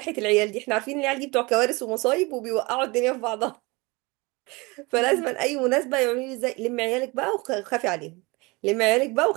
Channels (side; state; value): left; quieter; 25.4 dB